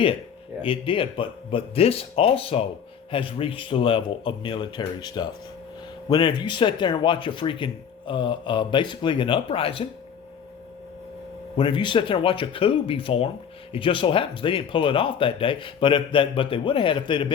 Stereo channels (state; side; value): quieter; right; 7.7 dB